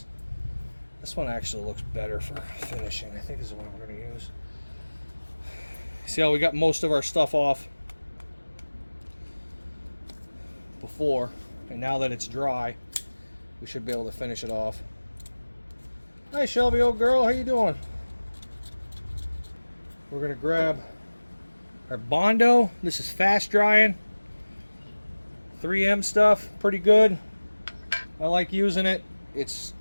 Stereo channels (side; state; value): both; inverted; correlation -1.00